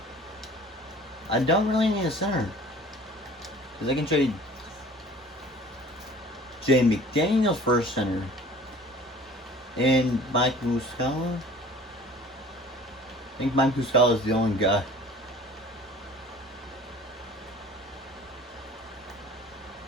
I don't really need a center. Because I can trade Jay McDaniels for a center. And Mike Muscala. I think Mike Muscala is the only guy.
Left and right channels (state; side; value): normal; both; correlation 0.47